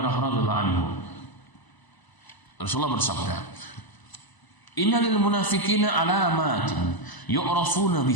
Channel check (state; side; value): late; right; 1.0 ms